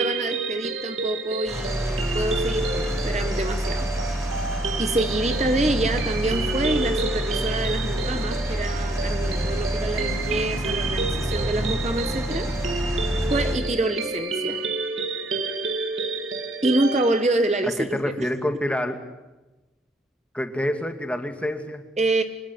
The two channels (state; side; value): normal; both; correlation 0.67